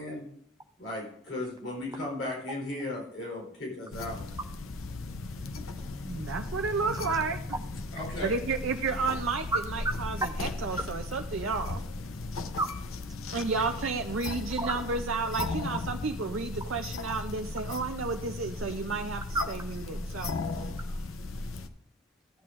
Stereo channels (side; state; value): both; normal; correlation 0.33